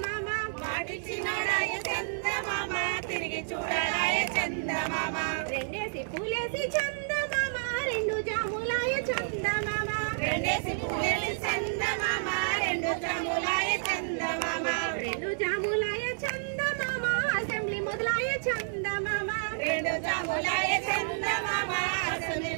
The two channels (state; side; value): silent; left; digital silence